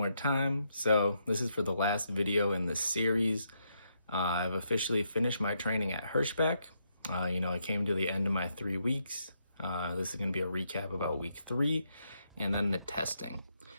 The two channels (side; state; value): both; inverted; correlation -0.79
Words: time. So this is for the last video in this series. I've officially finished my training at Hirschbach. I came to the end of my 3 weeks. This is going to be a recap about week 3 and then the testing.